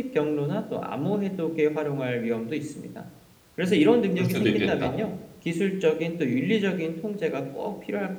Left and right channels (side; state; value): both; identical; correlation 1.00